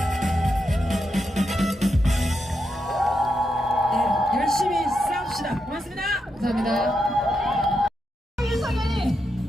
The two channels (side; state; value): both; normal; correlation 0.84